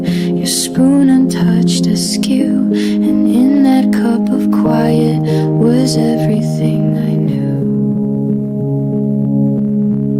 your spoon untouched askew, and in that cup of quiet was everything I knew.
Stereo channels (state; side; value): identical; both; correlation 1.00